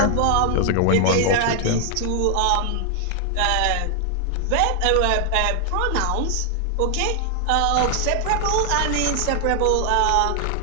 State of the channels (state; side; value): different; both; correlation 0.00